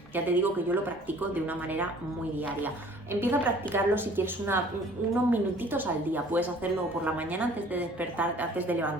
Ya te digo que yo lo practico de una manera muy diaria. Empieza a practicarlo si quieres unos minutitos al día. Puedes hacerlo por la mañana antes de despertar, antes de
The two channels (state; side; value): normal; both; correlation 0.52